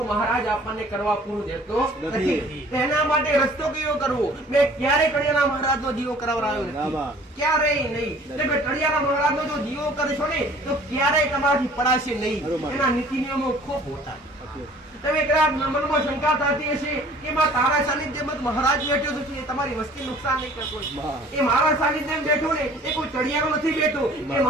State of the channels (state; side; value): normal; both; correlation 0.51